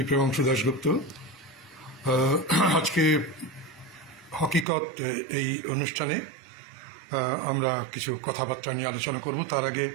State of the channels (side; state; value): left; drops out; at 4.7 s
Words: প্রেমাংশু দাশগুপ্ত। আজকে হকিকত এই অনুষ্ঠানে আমরা কিছু কথাবার্তা নিয়ে আলোচনা করব। তার আগে